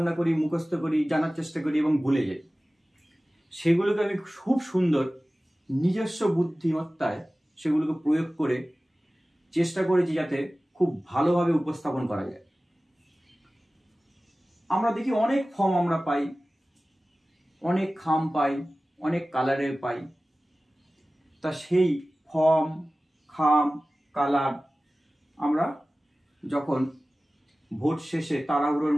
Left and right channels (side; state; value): both; normal; correlation 0.97